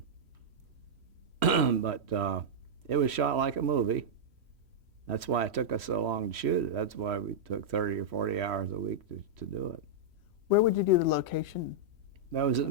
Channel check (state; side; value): late; left; 3.1 ms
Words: but it was shot like a movie. That's why it took us so long to shoot it. That's why we took 30 or 40 hours a week to do it. Where would you do the location? That was